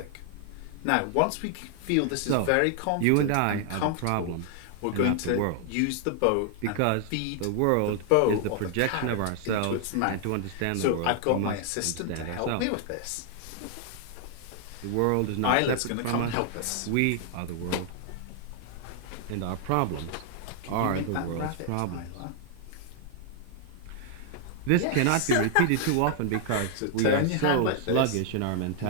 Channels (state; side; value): different; both; correlation 0.00